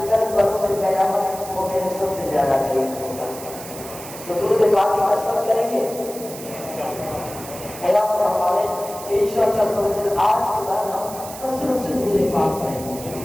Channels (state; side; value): noise; right; hiss, 13 dB below the sound